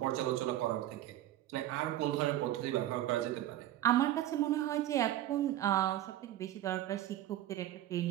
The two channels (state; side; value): quieter; left; 13.4 dB